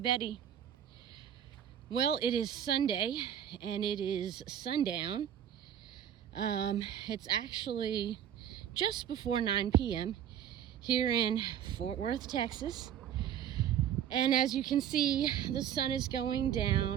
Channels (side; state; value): left; quieter; 9.9 dB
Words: Well, it is Sunday, and it is sundown. It's actually just before 9 p.m. here in Fort Worth, Texas. And as you can see, the sun is going